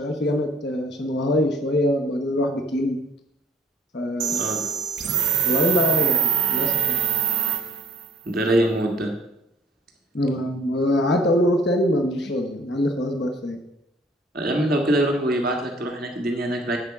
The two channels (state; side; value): normal; both; correlation 0.58